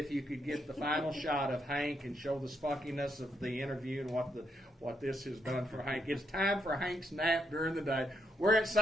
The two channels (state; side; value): normal; both; correlation 0.78